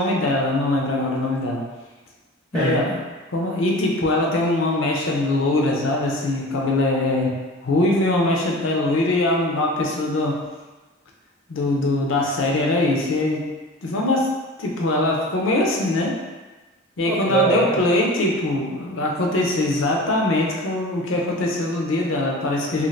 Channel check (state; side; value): normal; both; correlation 0.37